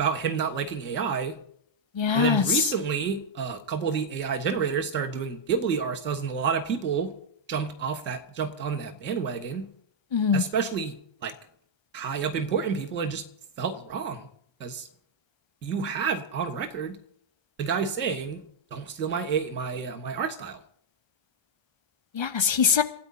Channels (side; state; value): right; late; 1.3 ms